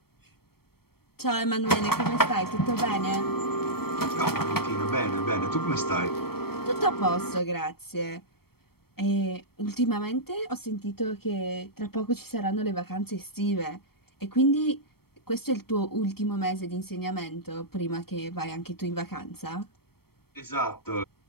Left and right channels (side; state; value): right; late; 0.95 ms